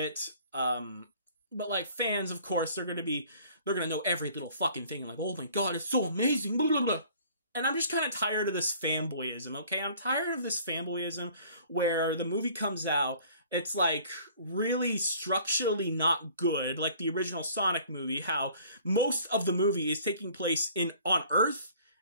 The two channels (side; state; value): both; inverted; correlation -0.53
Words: but, like, fans, of course, they're gonna know every little fucking thing, like, oh my god, it's so amazing, blah, blah, blah. And I'm just kind of tired of this fanboyism, okay? I'm tired of this fanboyism where the movie comes out, it's, like, really structurally not good, like the original Sonic movie, how most of the movie is taking place on Earth,